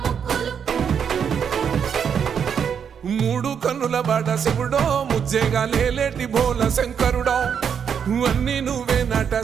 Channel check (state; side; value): quieter; left; 7.5 dB